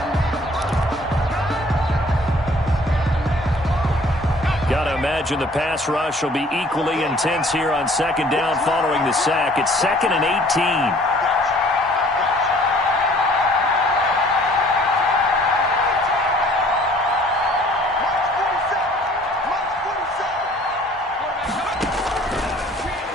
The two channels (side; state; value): both; normal; correlation 0.55